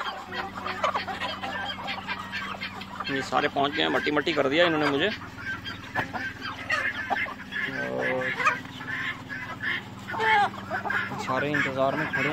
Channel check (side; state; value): both; identical; correlation 1.00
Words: ये सारे पहुंच गए हैं, मट्टी मट्टी कर दिया इन्होंने मुझे। और सारे इंतज़ार में खड़े